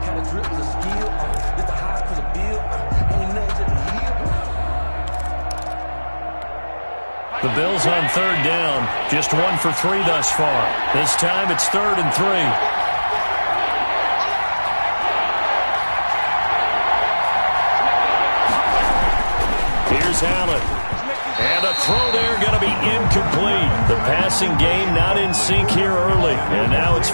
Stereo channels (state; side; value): inverted; both; correlation -1.00